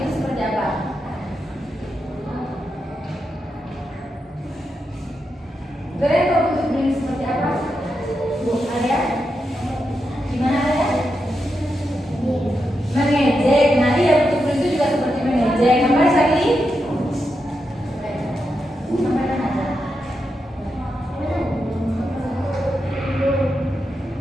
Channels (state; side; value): normal; both; correlation 0.86